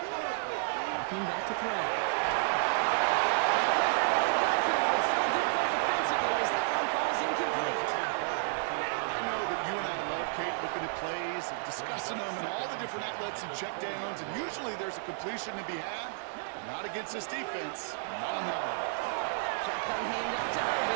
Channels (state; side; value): silent; left; 57 dB below the other